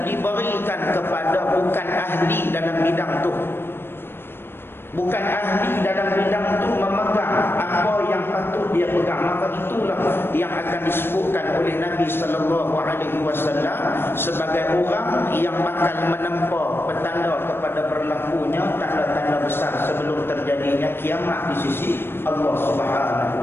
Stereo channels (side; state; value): right; late; 0.11 ms